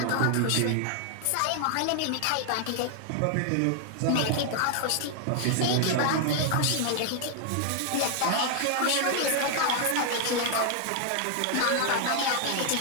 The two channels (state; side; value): different; both; correlation 0.00